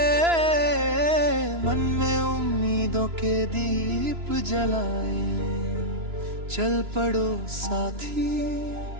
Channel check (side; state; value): left; late; 2.9 ms